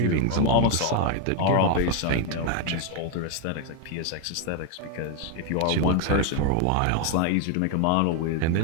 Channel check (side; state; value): both; different; correlation 0.01